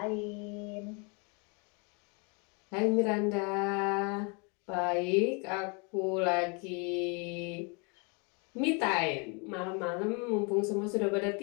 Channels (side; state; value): right; quieter; 33.4 dB